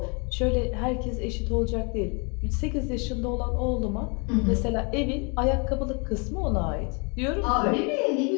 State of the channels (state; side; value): quieter; right; 33.7 dB